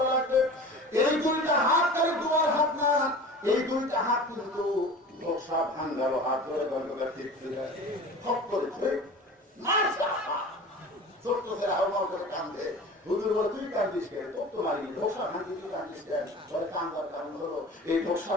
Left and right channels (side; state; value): both; normal; correlation 0.38